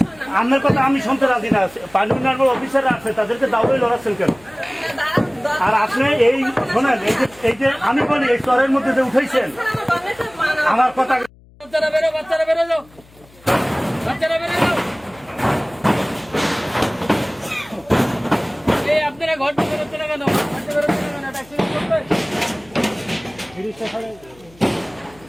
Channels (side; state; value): left; noise; hum, 26 dB below the sound